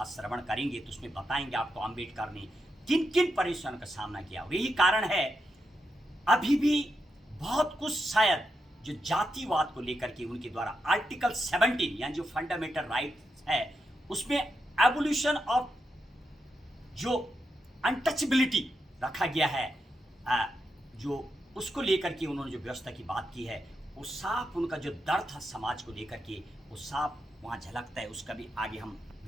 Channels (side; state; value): both; normal; correlation 0.85